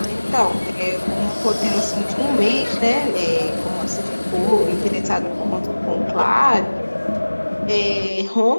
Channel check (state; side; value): inverted; both; correlation -1.00